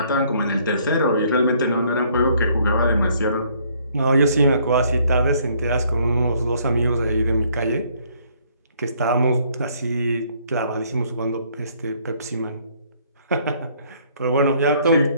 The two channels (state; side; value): inverted; both; correlation -0.64